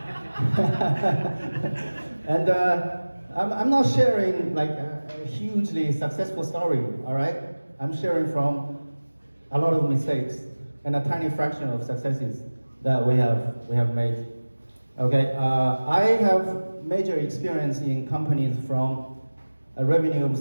And I'm not sharing a hugely successful story. All right, I'm sharing from a lot of mistakes and a tiny fraction of successes that we have made. Okay, I have major experience in companies from a revenue of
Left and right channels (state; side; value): inverted; both; correlation -1.00